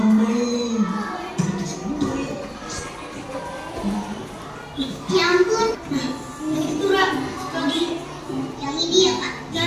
Ya ampun. Itu Ra, lagi yang ini ya Kak.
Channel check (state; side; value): identical; both; correlation 1.00